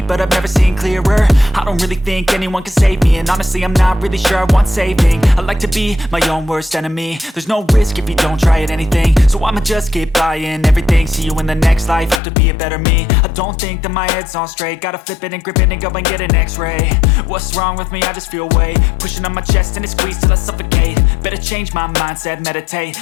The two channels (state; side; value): drops out; right; at 12.2 s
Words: but I've never seen clearer. I don't really think anyone can save me, and honestly I'm not really sure I want saving. I like to be my own worst enemy. There's no risk if you don't try at anything, so I'ma just keep buying everything. See you in the next life, have to be a better me. I don't think that my head's on straight, gotta flip it and grip it and go and get an x-ray. What's wrong with me? I just feel weight pushing on my chest and it squeezes till I suffocate. Better change my mindset, meditate.